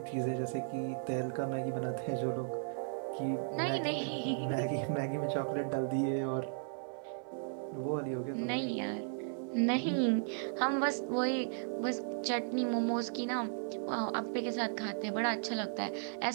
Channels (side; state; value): left; silent; 54 dB below the other